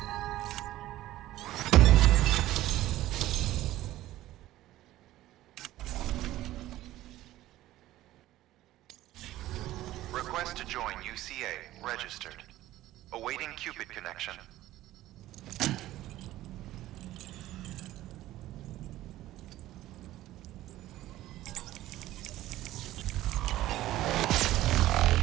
Request to join UCA. Registered. Awaiting Cupid connection.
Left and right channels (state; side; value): quieter; left; 15.1 dB